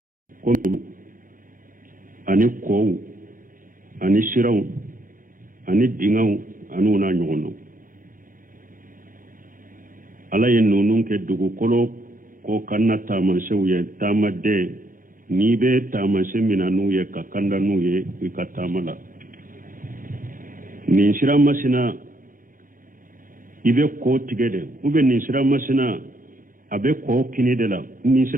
ko ani kow ani siraw ani dingaw anu na nyono ala ye nonun ke dugukolo ko kanna tamansew ye tamade ni be tamanse minanu ye ka kanda nu ye ka tamala ni sira masina ibe ko tigede ube ni sira masina abe ko kini de la ni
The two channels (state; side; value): late; left; 0.40 ms